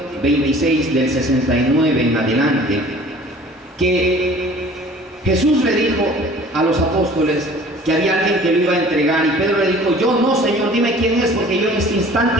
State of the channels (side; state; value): both; normal; correlation 0.48